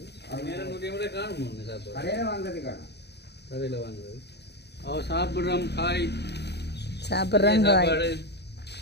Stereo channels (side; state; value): right; late; 0.49 ms